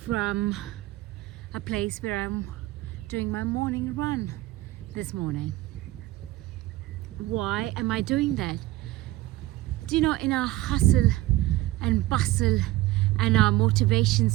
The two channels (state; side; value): quieter; left; 16.9 dB